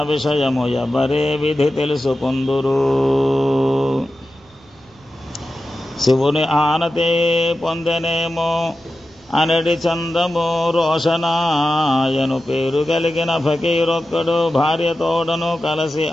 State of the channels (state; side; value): noise; right; rumble, 29 dB below the sound